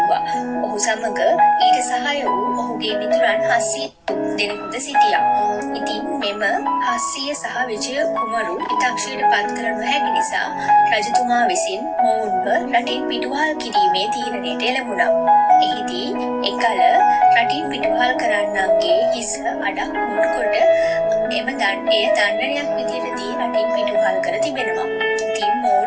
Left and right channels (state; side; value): identical; both; correlation 1.00